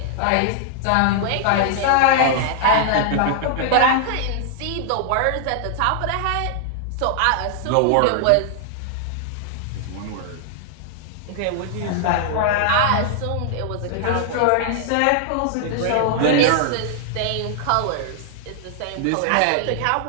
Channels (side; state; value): both; different; correlation -0.01